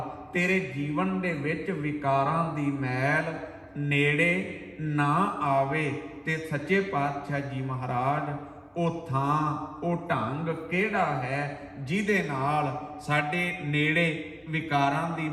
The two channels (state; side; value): identical; both; correlation 1.00